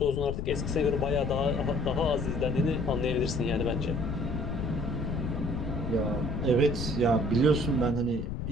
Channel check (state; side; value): noise; left; rumble, 4 dB below the sound